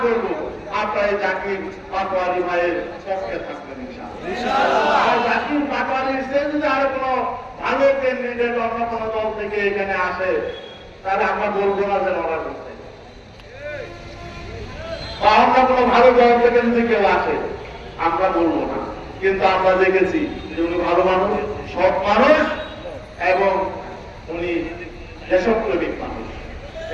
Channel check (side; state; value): both; identical; correlation 1.00